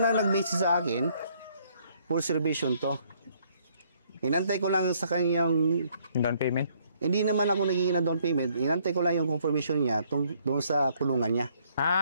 na nag-message sa akin, full reservation to. Inantay ko lang sa kanyang, Yung down payment? hindi naman ako nagiging na down payment, inantay ko lang yung confirmation niya doon sa kulungan niya.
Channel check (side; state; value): both; inverted; correlation -0.67